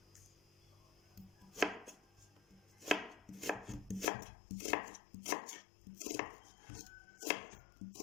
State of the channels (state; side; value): drops out; right; at 4.1 s